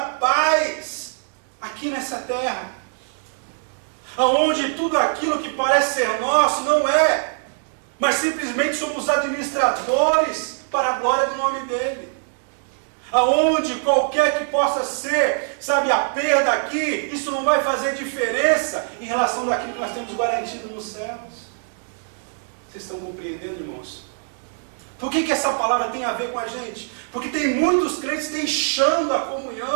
paz aqui nessa terra. Aonde tudo aquilo que parece ser nosso não é, mas simplesmente somos administradores para a glória do nome dEle. Aonde qualquer que possa ser, sabe, a perda aqui, isso não vai fazer diferença em relação daquilo que nós temos garantido nos céus. Vocês estão compreendendo, irmãos? Por que essa palavra tem a ver com a gente? Porque tem muitos crentes deixando a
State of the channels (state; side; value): silent; left; digital silence